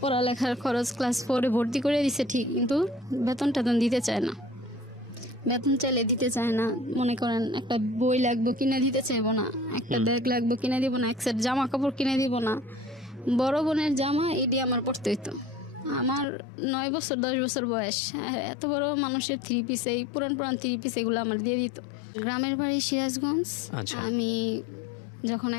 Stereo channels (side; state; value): right; drops out; at 16.2 s